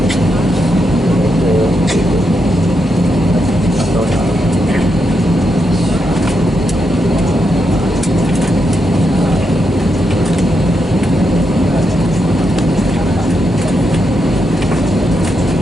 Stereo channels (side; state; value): both; normal; correlation 0.83